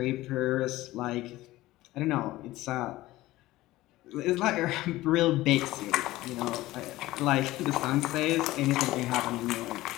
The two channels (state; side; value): quieter; right; 17.3 dB